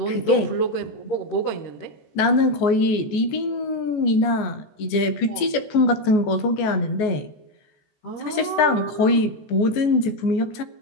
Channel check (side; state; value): right; late; 14 ms